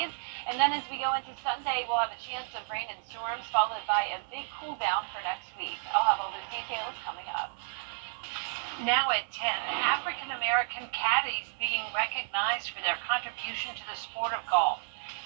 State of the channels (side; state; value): left; silent; digital silence